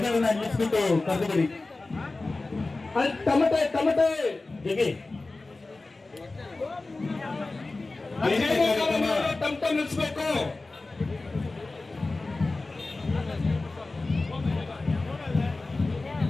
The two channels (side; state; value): right; quieter; 3.3 dB